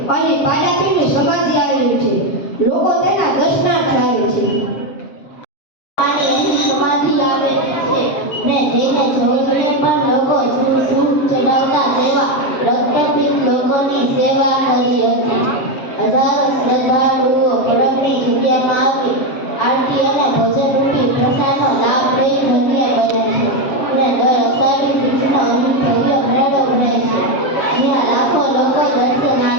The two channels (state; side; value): late; right; 7.5 ms